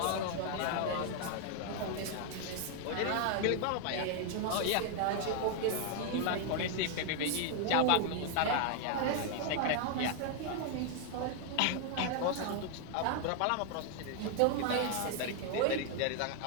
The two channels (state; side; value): different; both; correlation 0.00